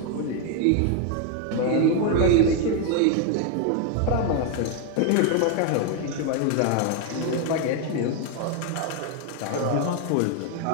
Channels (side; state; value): both; different; correlation 0.01